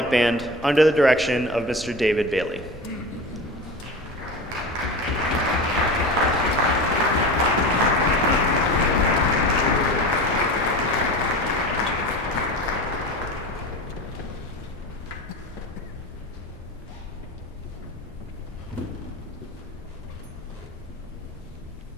Band under the direction of Mr. David Bailey.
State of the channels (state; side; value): normal; both; correlation 0.30